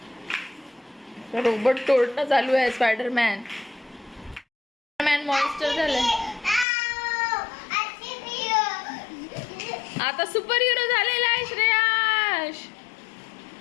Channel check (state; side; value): drops out; right; at 6.7 s